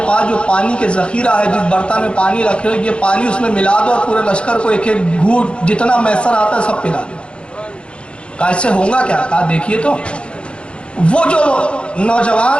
پاس جو پانی کے ذخیرہ ہے، جس برتن میں پانی رکھے ہو، یہ پانی اس میں ملا دو اور پورے لشکر کو ایک ایک گھونٹ جتنا میسر آتا ہے سب پلا دو۔ کہا اس سے ہوگا کیا؟ کہا دیکھیے تو وہ جو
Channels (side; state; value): right; late; 0.058 ms